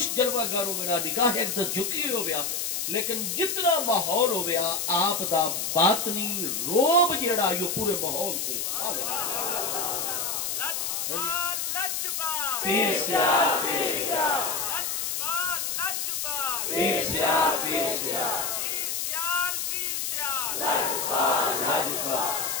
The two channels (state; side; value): noise; left; hiss, 1 dB below the sound